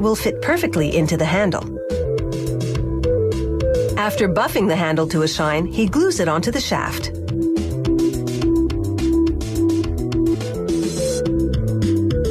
will fit perfectly into the handle. After buffing the handle to a shine, he glues it onto the shaft.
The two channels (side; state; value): both; identical; correlation 1.00